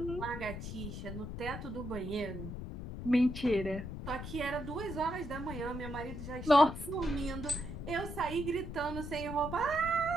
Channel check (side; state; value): left; noise; rumble, 7 dB below the sound